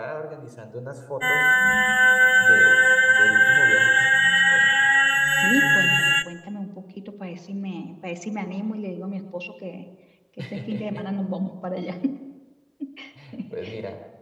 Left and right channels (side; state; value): both; identical; correlation 1.00